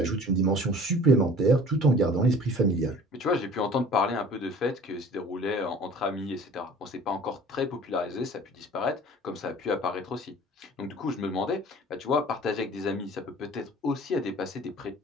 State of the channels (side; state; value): both; normal; correlation 0.46